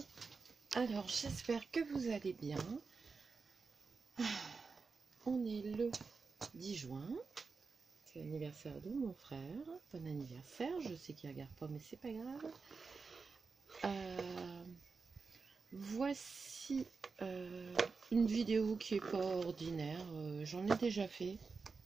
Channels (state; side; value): quieter; left; 4.6 dB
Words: Alors, j'espère que vous allez bien. On est le 10 juin. C'est l'anniversaire de mon frère. Bon anniversaire. Je sais qu'il ne regarde pas, mais c'est pas grave. Voici une vidéo qui est pas ordinaire. J'en ai déjà fait